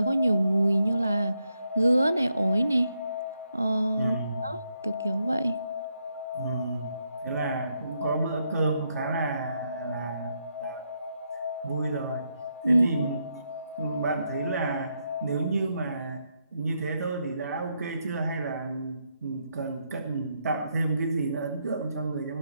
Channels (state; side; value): inverted; both; correlation -0.79